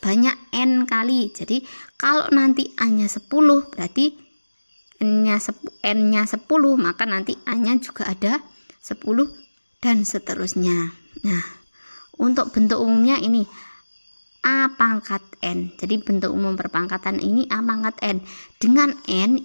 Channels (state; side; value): inverted; both; correlation -1.00